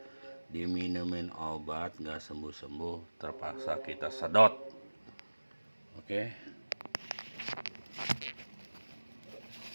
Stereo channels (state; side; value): inverted; both; correlation -1.00